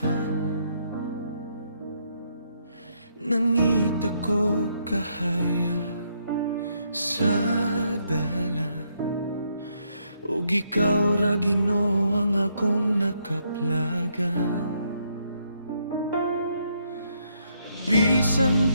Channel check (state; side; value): inverted; both; correlation -0.75